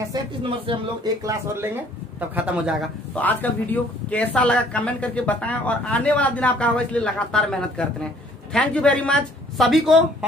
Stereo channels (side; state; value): both; normal; correlation 0.58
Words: 37 नंबर से हम लोग एक क्लास और लेंगे तब खत्म हो जाएगा। तो आज का वीडियो कैसा लगा कमेंट करके बताएं, और आने वाला दिन आपका होगा, इसलिए लगातार मेहनत करते रहें। Thank you very much. सभी को